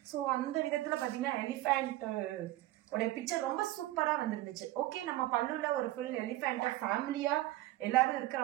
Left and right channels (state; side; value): quieter; left; 16.5 dB